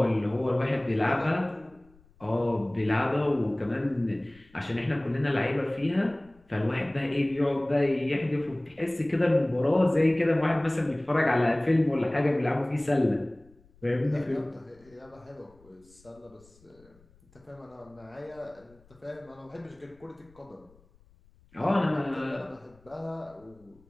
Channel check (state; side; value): noise; left; rumble, 29 dB below the sound